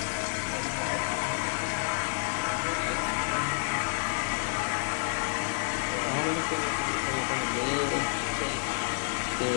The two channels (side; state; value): right; silent; 56 dB below the other